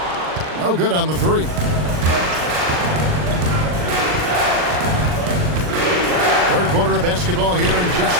No good on the three. Third quarter of basketball here in just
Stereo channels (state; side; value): late; left; 39 ms